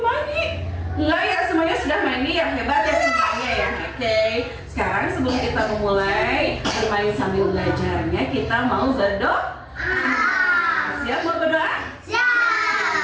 mandi? Enggak ya, semuanya sudah mandi ya, hebat ya semuanya ya. Oke, sekarang sebelum kita memulai bermain sambil belajarnya, kita mau berdoa. Siap mau berdoa?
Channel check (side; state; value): both; identical; correlation 1.00